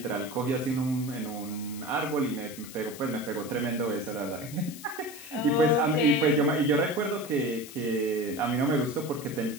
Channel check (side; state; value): left; noise; hiss, 15 dB below the sound